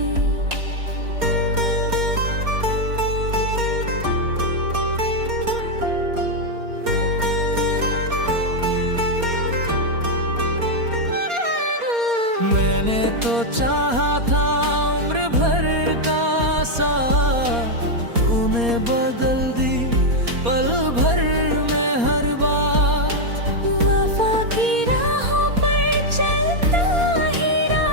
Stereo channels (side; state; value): left; late; 4.3 ms